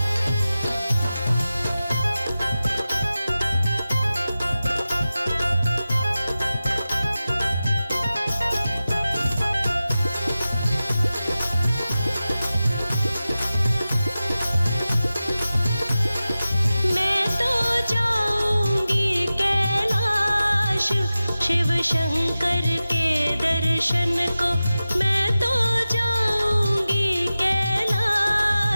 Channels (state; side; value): inverted; both; correlation -0.95